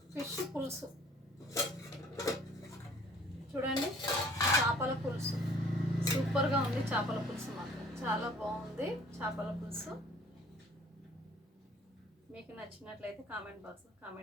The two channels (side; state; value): both; normal; correlation 0.55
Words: ఫిష్ పులుసు. చూడండి, చేపల పులుసు సూపర్గా ఉంది. చేపల పులుసు మాత్రం చాలా బాగుంది. చేపల పులుసు మీకు నచ్చినట్లయితే కామెంట్ బాక్స్లో